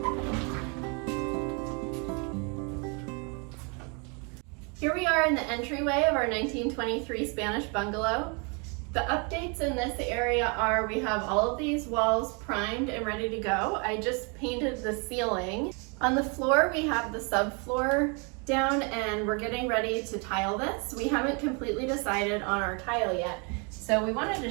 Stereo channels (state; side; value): quieter; left; 34.1 dB